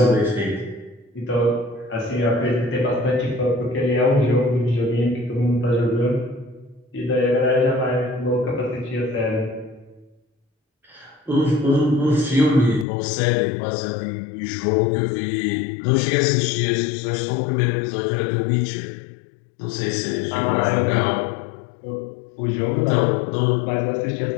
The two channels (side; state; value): right; drops out; at 12.9 s